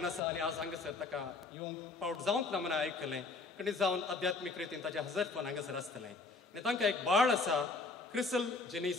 आसा आनी आज हांगासर ताका येवंक फावट जावंक ना म्हणून आयकलें. कणी जावन आध्यात्मीक रितीन ताचें हजरपण हांगासर आसतलें. आनी तांकां एक बाळ आसा CRISIL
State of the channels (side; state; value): right; quieter; 3.9 dB